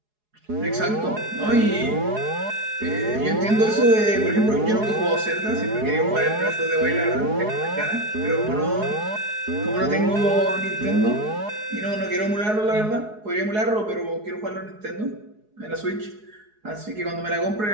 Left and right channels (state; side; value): late; left; 4.8 ms